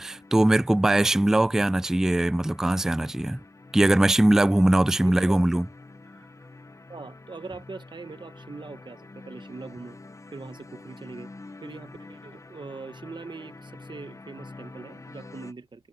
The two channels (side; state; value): both; normal; correlation 0.97